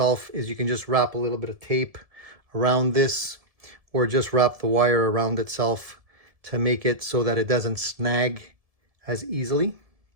is you can just wrap a little bit of tape around this, or just wrap the wire around itself to make it so that it doesn't snag as easily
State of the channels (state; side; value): late; left; 1.7 ms